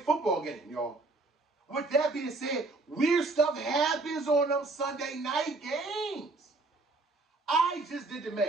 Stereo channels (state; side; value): quieter; left; 3.3 dB